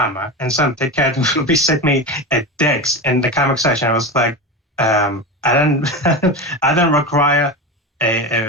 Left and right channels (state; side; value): normal; both; correlation 0.23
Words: and some cat will be sent me a dicks in the comic section. I was like, I don't require